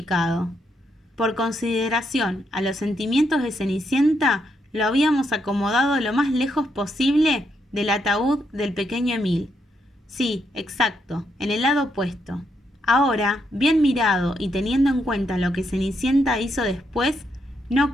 Por consideración a los sentimientos de Cenicienta, lo habíamos acomodado lo más lejos posible del ataúd del pequeño Emil. Sí, exacto, en el lado opuesto. Ahora, bien mirado y teniendo en cuenta lo que Cenicienta hizo después, no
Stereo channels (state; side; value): normal; both; correlation 0.79